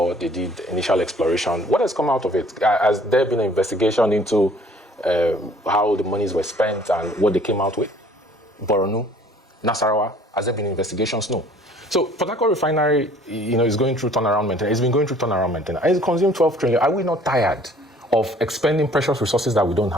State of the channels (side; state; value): both; normal; correlation 0.55